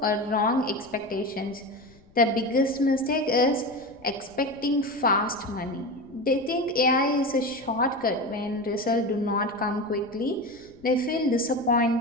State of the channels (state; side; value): noise; left; rumble, 27 dB below the sound